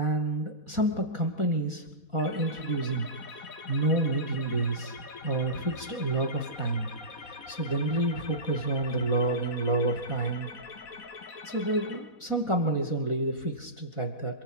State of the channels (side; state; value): right; late; 4.1 ms